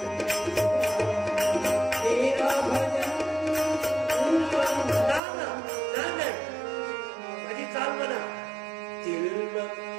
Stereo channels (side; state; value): left; drops out; at 5.2 s